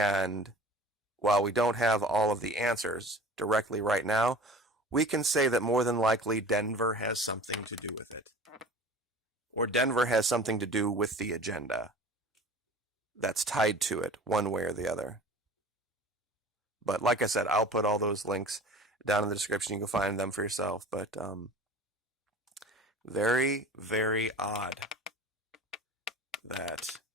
while we don't have all of the answers directly right now, we can say that more than likely Denver has something to do with it. Or Denver has something to do with the agenda that's tied to it, one way or the other. But like I said, I'll put all those links down in the description. You can find them for yourself. But very, very odd that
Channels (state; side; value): normal; both; correlation 0.41